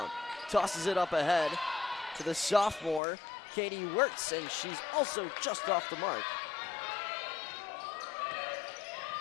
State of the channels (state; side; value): drops out; right; at 3.0 s